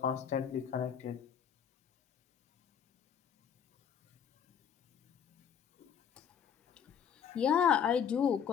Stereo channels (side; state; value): right; quieter; 7.9 dB